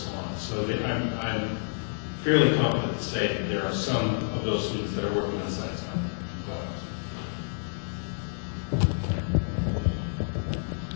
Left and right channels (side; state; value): right; silent; digital silence